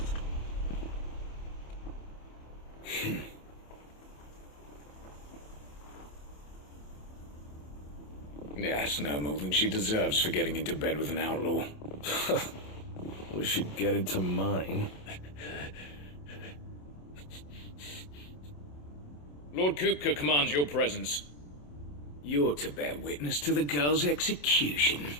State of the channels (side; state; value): right; late; 27 ms